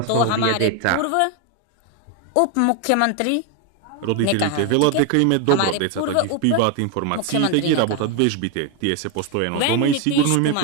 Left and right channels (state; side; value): different; both; correlation 0.01